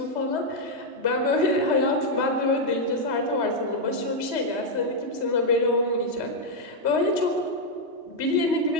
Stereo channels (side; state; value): left; late; 3.1 ms